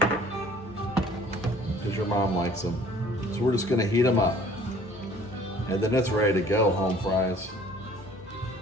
because your mom likes them. So we're just gonna heat them up, and then it's ready to go. Home fries.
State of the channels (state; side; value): normal; both; correlation 0.53